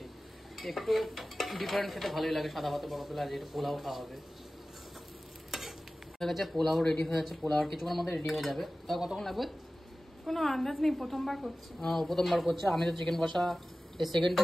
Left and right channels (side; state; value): both; normal; correlation 0.96